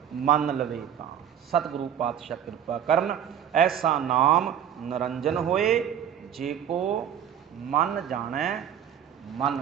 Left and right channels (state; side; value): quieter; left; 9.4 dB